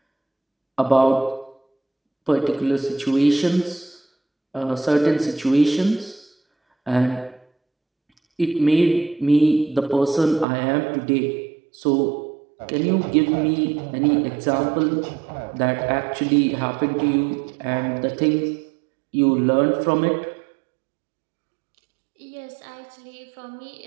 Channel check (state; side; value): drops out; left; at 10.5 s